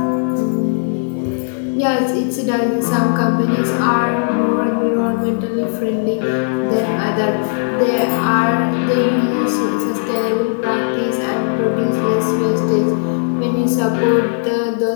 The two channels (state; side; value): silent; right; digital silence